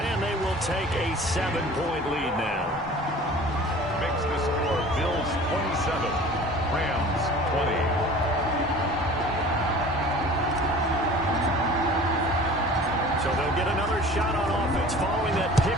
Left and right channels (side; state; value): both; normal; correlation 0.44